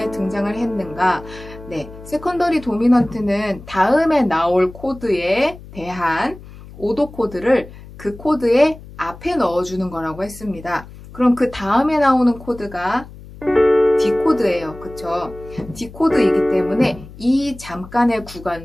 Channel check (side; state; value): left; noise; hum, 17 dB below the sound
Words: 등장을 했는가? 네, 세컨더리 도미넌트는 다음에 나올 코드에 대한 5도 코드를 그 코드의 앞에 넣어주는 거라고 했습니다. 그럼 그 다음에 나오는 코드가 D 코드예요. 그쵸? D 코드이기 때문에 이 잠깐의